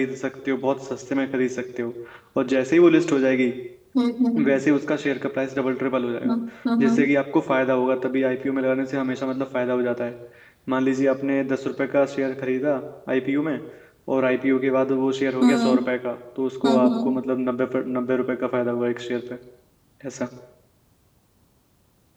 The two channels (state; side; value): identical; both; correlation 1.00